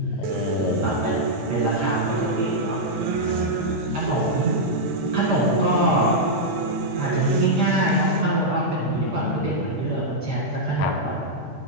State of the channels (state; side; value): normal; both; correlation -0.06